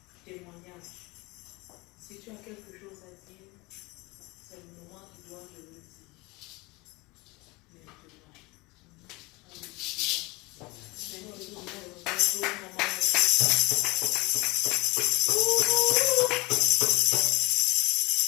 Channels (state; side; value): quieter; right; 23.9 dB